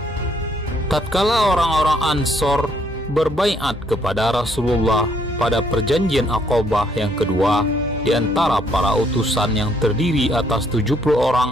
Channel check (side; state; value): both; normal; correlation 0.68